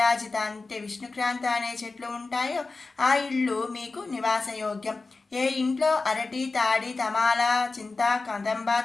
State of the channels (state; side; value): quieter; right; 3.8 dB